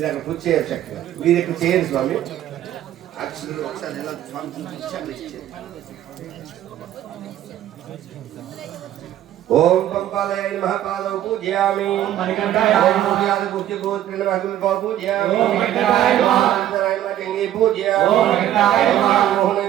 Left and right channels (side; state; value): left; quieter; 12.1 dB